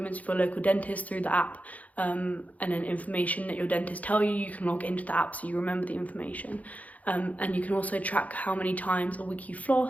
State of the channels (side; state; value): right; late; 0.072 ms